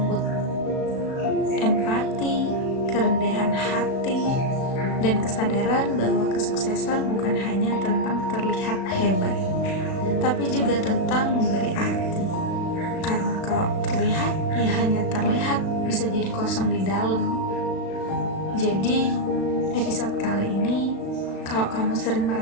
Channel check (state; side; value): late; right; 36 ms